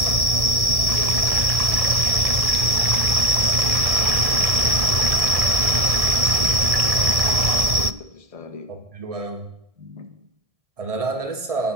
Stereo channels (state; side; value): late; left; 1.7 ms